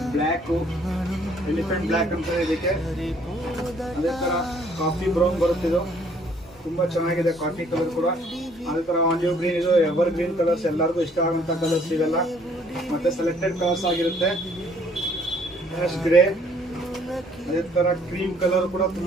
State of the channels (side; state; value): both; normal; correlation 0.61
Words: black, elephant black ಅಂತ ಇದಕ್ಕೆ. ಅದೇ ತರ ಕಾಫಿ ಬ್ರೌನ್ ಬರುತ್ತಿದ್ದು, ತುಂಬಾ ಚೆನ್ನಾಗಿದೆ ಕಾಫಿ ಕಲರ್ ಕೂಡ. ಅದೇ ತರ ಆಲಿವ್ ಗ್ರೀನ್, ಇದು ಎವರ್ ಗ್ರೀನ್ ಕಲರ್ಸ್, ಎಲ್ಲರಿಗೂ ಇಷ್ಟ ಆಗುವಂತ ಕಲರ್ಸ್ ಇವೆಲ್ಲ. ಮತ್ತೆ ಸೆಲೆಕ್ಟೆಡ್ ಕಲರ್ಸ್ ಆಗಿರುತ್ತೆ. ಗ್ರೇ, ಅದೇ ತರ ಕ್ರೀಮ್ ಕಲರ್ ಕೂಡ